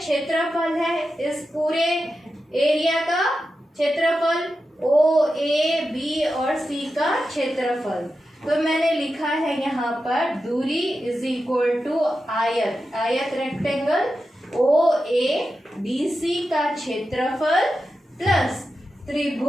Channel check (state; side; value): normal; both; correlation 0.90